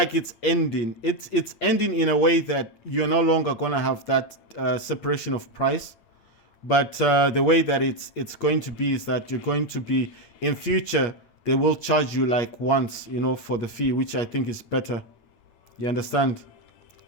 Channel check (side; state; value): right; late; 9.0 ms